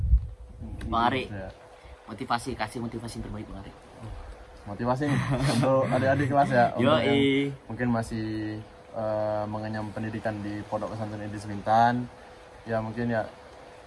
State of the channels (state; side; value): identical; both; correlation 1.00